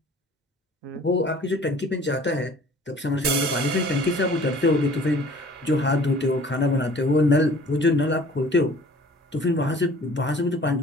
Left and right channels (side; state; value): both; normal; correlation 0.50